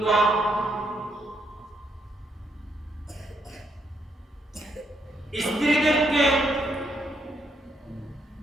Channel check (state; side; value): normal; both; correlation 0.75